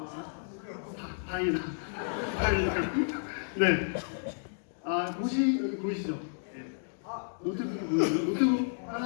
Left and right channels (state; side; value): silent; right; digital silence